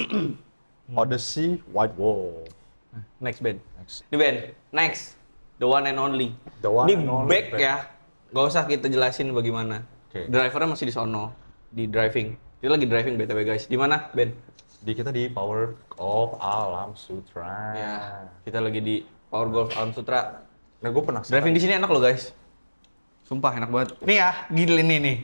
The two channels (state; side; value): inverted; both; correlation -1.00